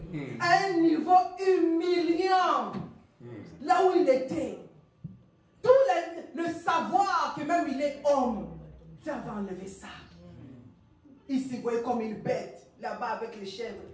À un niveau humiliant. Là où il était. Tout le savoir que même il est homme. Tu avais enlevé ça. Il s'y voyait comme une bête. Là-bas avec les chèvres,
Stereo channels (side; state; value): both; identical; correlation 1.00